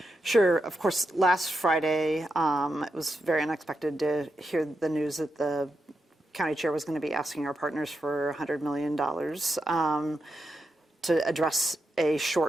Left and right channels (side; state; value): both; normal; correlation 0.86